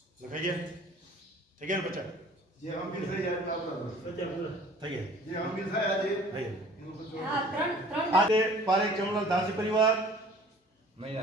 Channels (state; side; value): normal; both; correlation 0.49